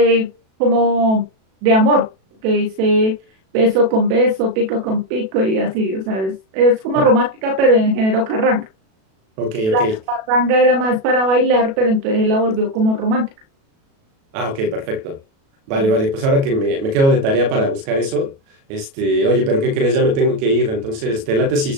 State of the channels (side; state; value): left; late; 37 ms